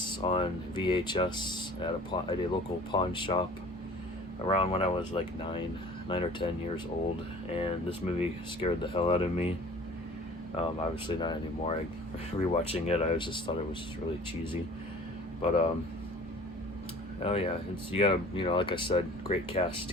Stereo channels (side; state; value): both; normal; correlation 0.46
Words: on VHS at a local pawn shop around when I was like 9 or 10 years old, and this movie scared the hell out of me. Obviously not anymore. Rewatching it, I just thought it was really cheesy. But oh yeah, you got like I said, great cast